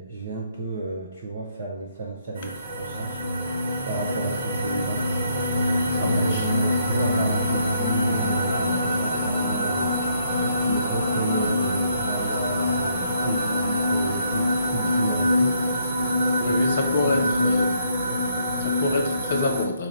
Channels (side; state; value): both; inverted; correlation -0.72